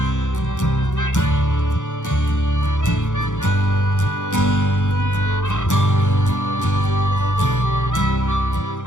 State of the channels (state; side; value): late; right; 0.86 ms